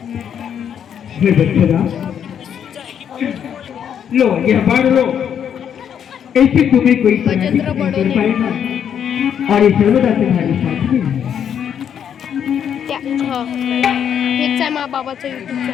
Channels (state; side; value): quieter; right; 8.6 dB